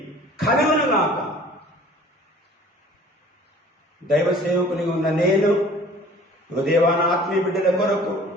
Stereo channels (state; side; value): normal; both; correlation 0.49